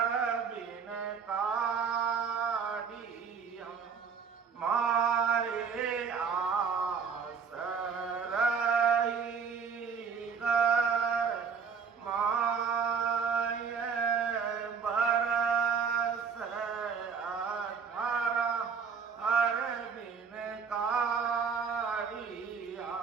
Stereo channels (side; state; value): left; quieter; 6.2 dB